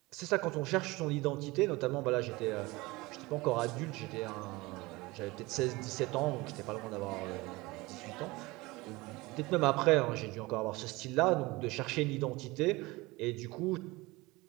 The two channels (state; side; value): quieter; left; 22.1 dB